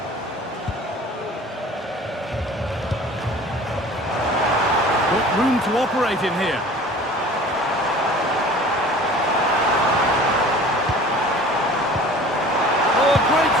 Got room to operate in here. Oh, a great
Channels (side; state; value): both; normal; correlation 0.45